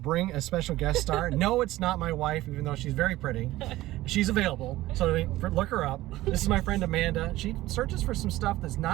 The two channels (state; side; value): quieter; left; 16.7 dB